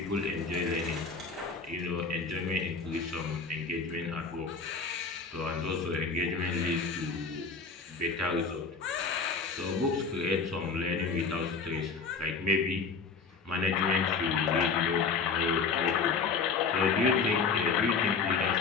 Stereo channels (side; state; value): right; quieter; 5.0 dB